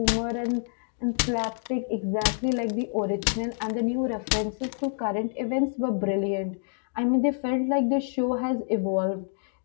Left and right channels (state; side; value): silent; right; digital silence